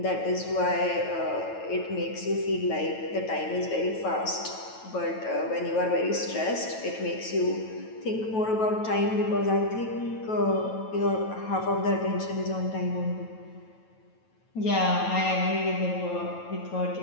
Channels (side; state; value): right; late; 9.1 ms